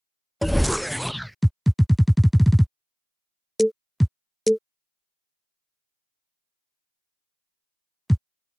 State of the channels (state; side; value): identical; both; correlation 1.00